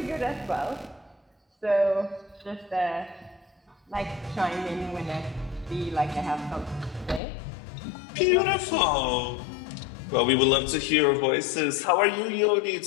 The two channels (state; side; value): drops out; right; at 7.2 s